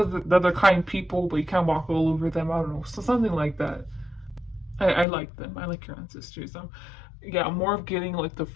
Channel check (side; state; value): right; drops out; at 5.1 s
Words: they're kind people, but you can't walk all over them. I don't know, so something like that. I like them. I like your ancestors. Yeah, I'm more of getting like the